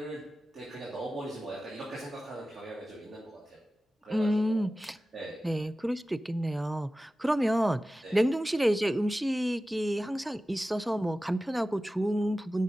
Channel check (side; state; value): both; normal; correlation 0.95